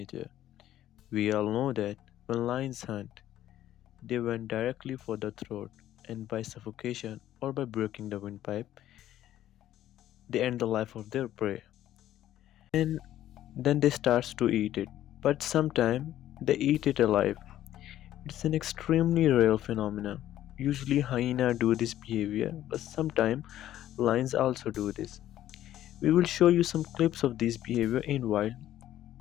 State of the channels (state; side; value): quieter; right; 12.7 dB